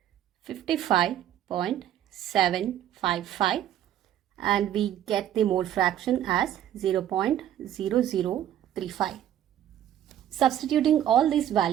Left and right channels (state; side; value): quieter; left; 11.2 dB